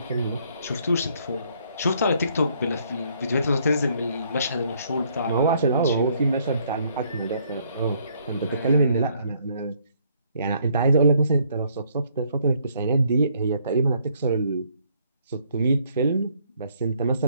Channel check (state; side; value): inverted; both; correlation -0.67